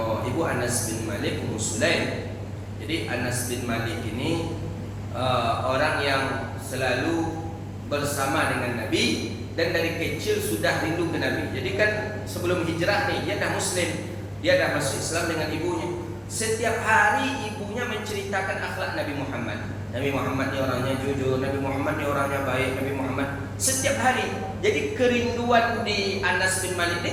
Anas bin Malik Ummu Sulaim. Jadi Anas bin Malik ini orang yang selalu bersama dengan Nabi dan dari kecil sudah rindu ke Nabi. Jadi kan sebelum hijrah nih dia dah Muslim, dia dah masuk Islam dengan ibunya. Setiap hari ibunya menceritakan akhlak Nabi Muhammad. Nabi Muhammad ni orangnya jujur, Nabi Muhammad ni orangnya baik, Nabi Muhammad setiap hari. Jadi kerinduan di Anas bin Malik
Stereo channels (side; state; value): both; identical; correlation 1.00